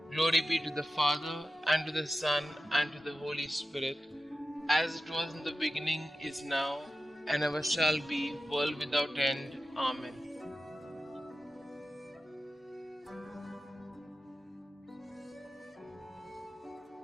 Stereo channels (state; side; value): normal; both; correlation 0.93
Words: Glory be to the Father, and to the Son, and to the Holy Spirit, as it was in the beginning, is now, and ever shall be, world without end. Amen.